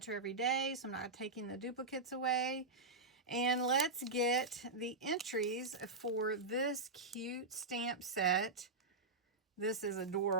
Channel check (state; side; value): quieter; left; 3.3 dB